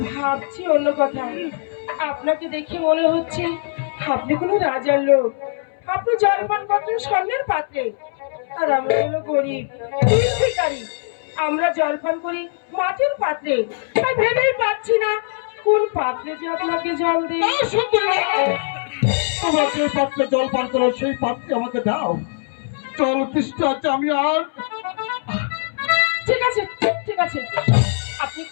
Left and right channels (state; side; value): silent; right; 65 dB below the other